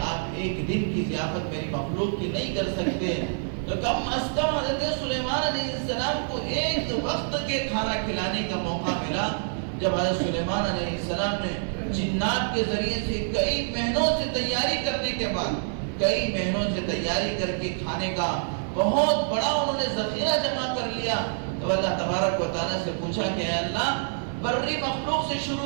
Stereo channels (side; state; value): left; silent; digital silence